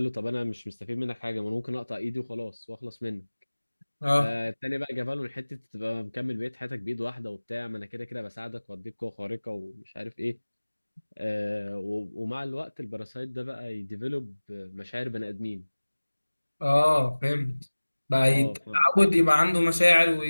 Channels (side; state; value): both; inverted; correlation -1.00